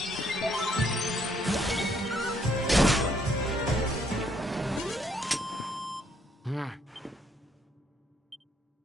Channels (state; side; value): normal; both; correlation 0.69